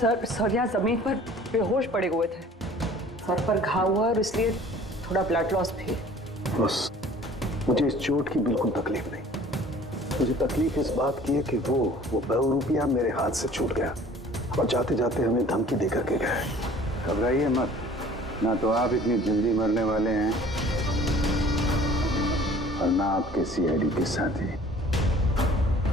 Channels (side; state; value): both; normal; correlation 0.49